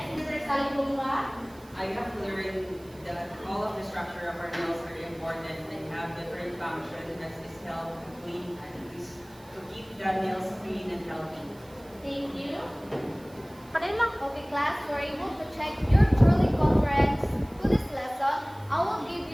Mr. Salibunga. I have learned that all of the structure of our nails are important and have different functions as is help to clean and is to keep the nails clean and healthy. Thank you. Okay, class, we're able to check your truly conference to this lesson. I will give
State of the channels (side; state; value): right; noise; hiss, 26 dB below the sound